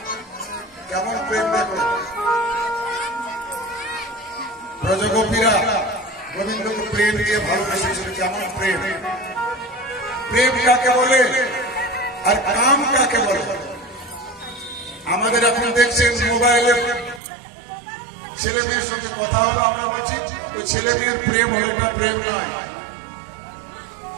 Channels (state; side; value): drops out; left; at 17.2 s